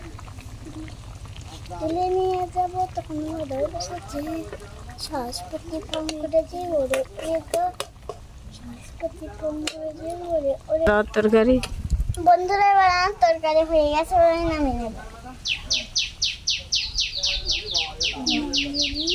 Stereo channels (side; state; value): both; identical; correlation 1.00